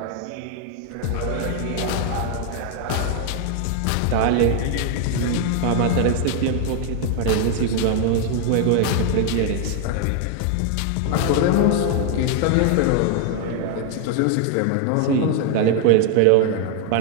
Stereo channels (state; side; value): different; both; correlation 0.00